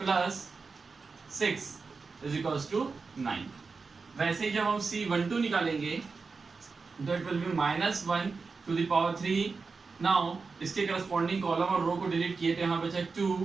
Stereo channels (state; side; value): quieter; left; 4.5 dB